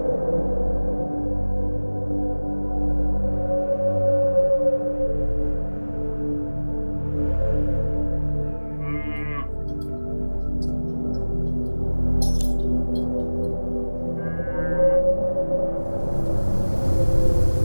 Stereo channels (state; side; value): inverted; both; correlation -1.00